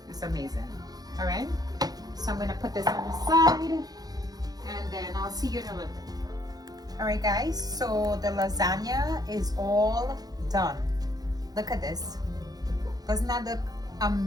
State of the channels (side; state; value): left; late; 0.19 ms